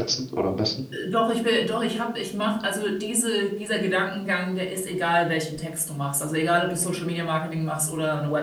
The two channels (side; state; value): both; identical; correlation 1.00